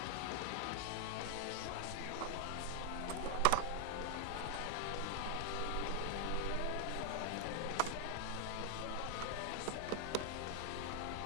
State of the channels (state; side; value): different; both; correlation 0.00